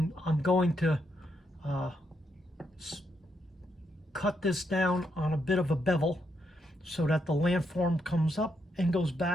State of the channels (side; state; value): both; normal; correlation 0.79